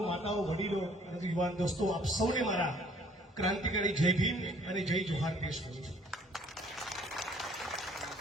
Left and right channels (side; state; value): both; normal; correlation 0.58